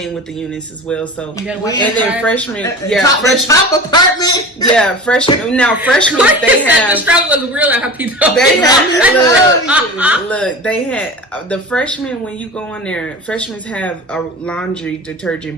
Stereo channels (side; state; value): both; normal; correlation 0.32